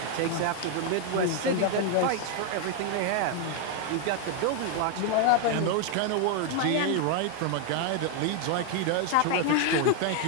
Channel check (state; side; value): different; both; correlation 0.00